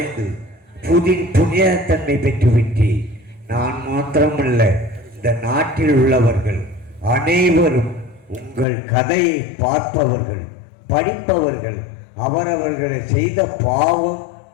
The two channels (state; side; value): drops out; right; at 8.7 s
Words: புனிதத்தன்மை பெற்றுவிட்டேன். நான் மாத்திரமல்ல, இந்த நாட்டில் உள்ளவர்கள் அனைவரும் உங்கள் கதையை பார்ப்பவர்கள், படிப்பவர்கள் அவரவர்களை செய்த பாவம்